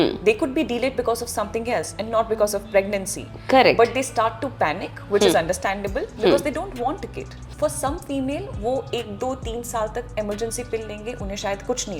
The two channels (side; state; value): both; identical; correlation 1.00